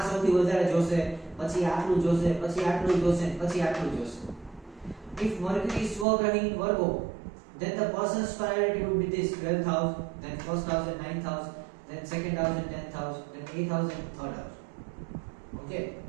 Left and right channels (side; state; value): left; drops out; at 6.1 s